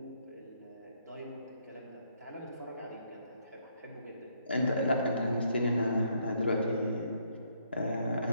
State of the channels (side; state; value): both; inverted; correlation -0.71